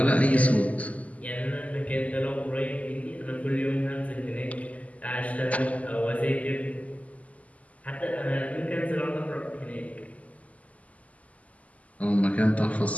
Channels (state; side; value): late; right; 0.071 ms